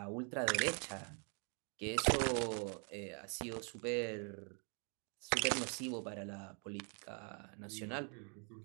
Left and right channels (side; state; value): left; quieter; 39.6 dB